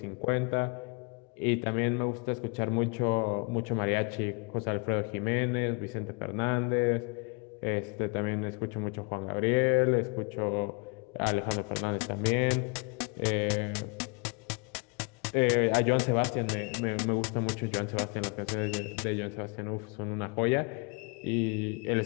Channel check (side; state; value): right; quieter; 32.8 dB